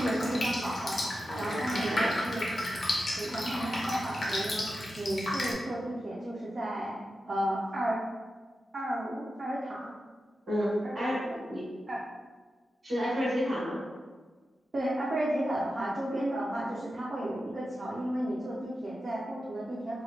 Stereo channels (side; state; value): both; normal; correlation 0.91